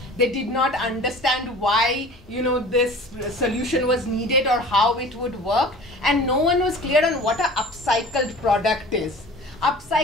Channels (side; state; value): both; normal; correlation 0.42